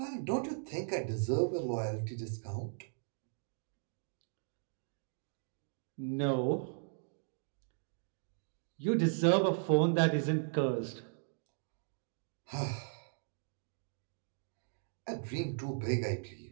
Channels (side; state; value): left; silent; digital silence